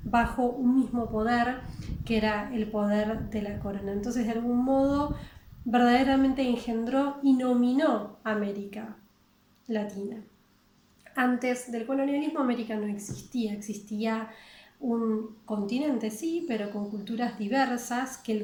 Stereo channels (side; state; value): both; identical; correlation 1.00